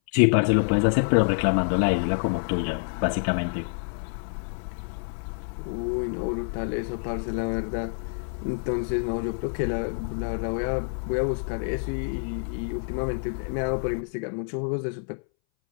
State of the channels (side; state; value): right; silent; 60 dB below the other